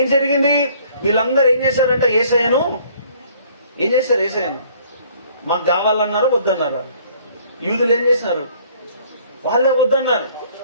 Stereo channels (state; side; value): inverted; both; correlation -0.58